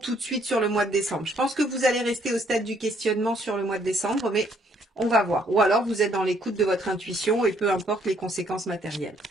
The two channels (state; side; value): normal; both; correlation 0.66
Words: de suite sur le mois de décembre. Je pense que vous allez rester au stade du questionnement sur le mois de décembre, mais on va voir. Ou alors vous êtes dans l'écoute de votre intuition et peu importe les conséquences matérielles.